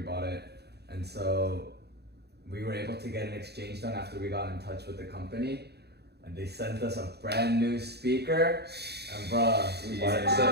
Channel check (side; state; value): left; late; 0.48 ms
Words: bought it, and so we were able to get an exchange done after we got in touch with the company, and they sent us a brand new speaker. And bruh,